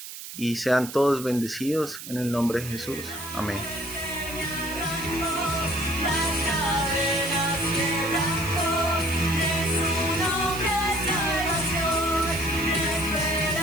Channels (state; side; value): noise; right; hiss, 11 dB below the sound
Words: y sean todos bendecidos en el nombre de Jesús. Amén.